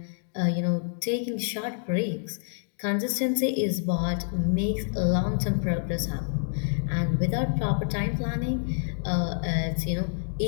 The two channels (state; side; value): silent; right; digital silence